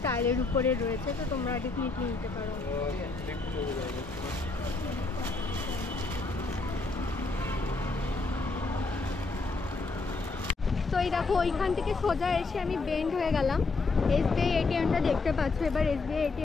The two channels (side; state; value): right; quieter; 3.8 dB